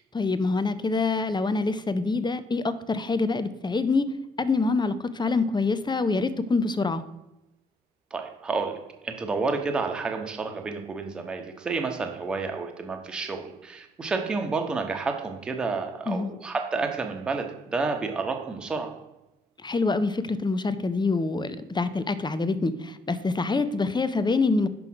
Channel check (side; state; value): both; normal; correlation 0.72